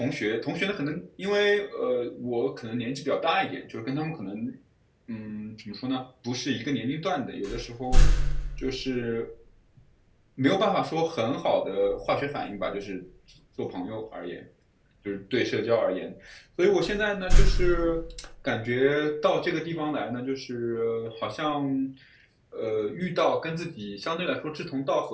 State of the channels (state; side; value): identical; both; correlation 1.00